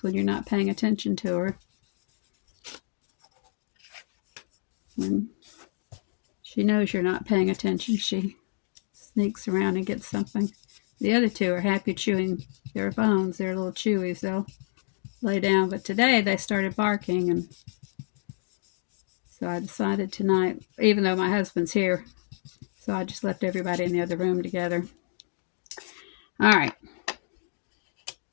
when you're not paying attention to her. When she knows you're not paying attention, she sneaks around and gets something. The other two are happy chewing their bones. They're little chewies. They'll lay down, but today they started barking, and so I decided tonight, even though my husband's here, so I just left everybody in the other room together. All right.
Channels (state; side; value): silent; right; digital silence